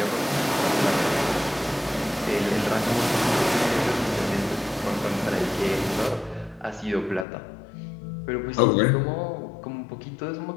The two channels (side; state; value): right; drops out; at 7.2 s